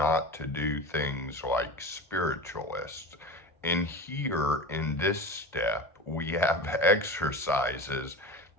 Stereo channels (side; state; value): both; normal; correlation 0.29